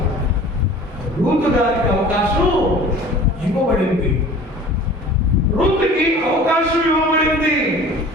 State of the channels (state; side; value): normal; both; correlation 0.44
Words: రూతు గారికి అవకాశం ఇవ్వబడింది. రూతుకి అవకాశం